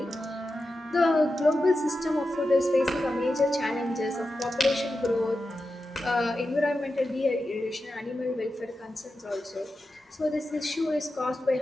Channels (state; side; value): normal; both; correlation 0.91